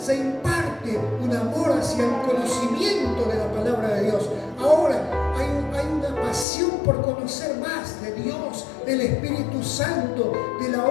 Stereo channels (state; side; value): drops out; right; at 6.5 s